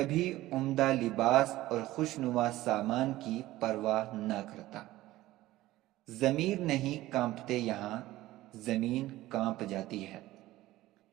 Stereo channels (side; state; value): left; quieter; 16.5 dB